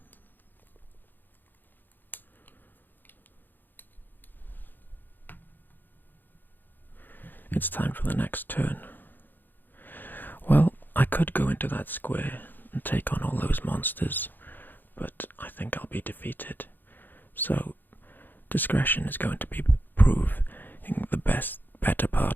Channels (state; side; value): late; right; 0.090 ms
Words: It's time for the next turn. Well, I could go into that square and take on all those monsters, but I think I'll be defeated. So discretion is going to be proving the better